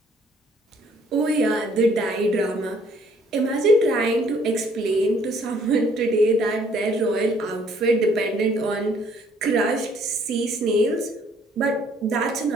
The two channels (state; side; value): normal; both; correlation 0.62